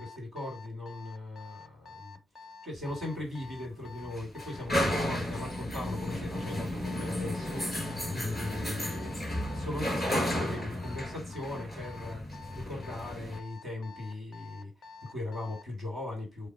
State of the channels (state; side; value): normal; both; correlation 0.83